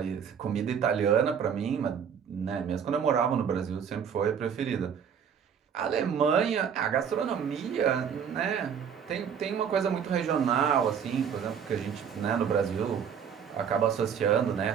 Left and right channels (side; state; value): left; quieter; 7.5 dB